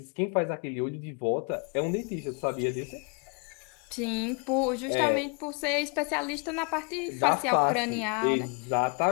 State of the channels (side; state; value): right; quieter; 35.1 dB